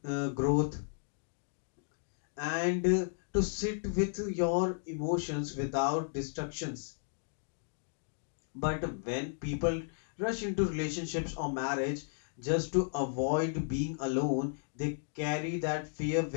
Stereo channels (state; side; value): silent; right; digital silence